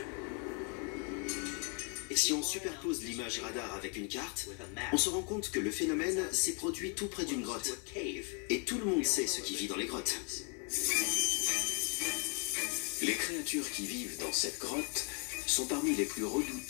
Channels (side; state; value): right; quieter; 36.4 dB